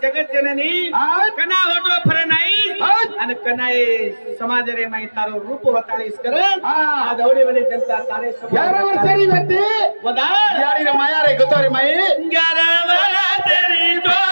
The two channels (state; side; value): inverted; both; correlation -1.00